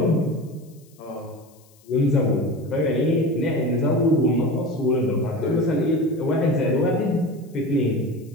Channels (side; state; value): left; noise; hiss, 30 dB below the sound